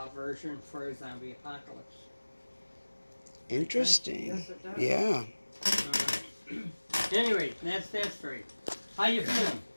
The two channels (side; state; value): both; inverted; correlation -1.00